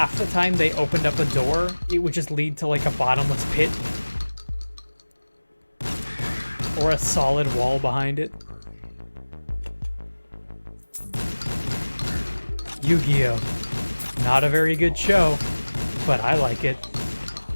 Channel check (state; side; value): inverted; both; correlation -1.00